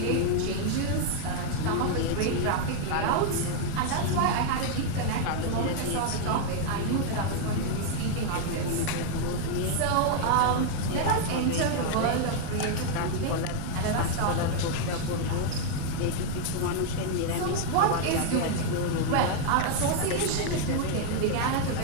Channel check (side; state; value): both; different; correlation 0.00